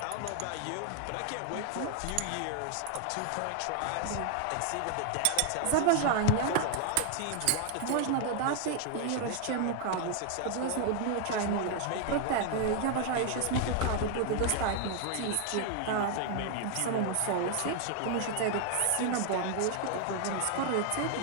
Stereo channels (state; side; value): different; both; correlation 0.00